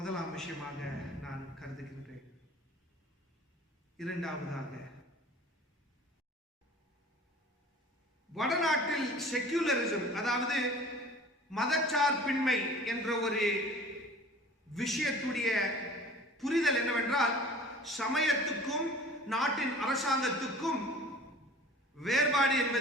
விஷயமாக நான் கருதுகின்றேன். இரண்டாவதாக, வடநாட்டில் செக்யூலரிசம், அதாவது மதச்சார்பின்மை என்ற ஒரு விஷயத்துடைய புரிதல் என்னவென்றால், சமயத்துக்கும் நாட்டின் அரசாங்கத்துக்கும் வேறுபாடு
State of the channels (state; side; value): normal; both; correlation 0.45